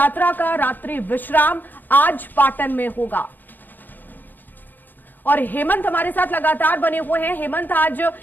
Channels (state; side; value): late; right; 0.088 ms